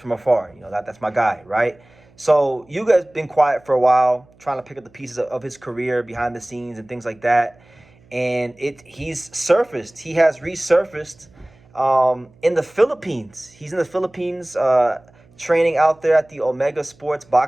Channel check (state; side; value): noise; right; hum, 29 dB below the sound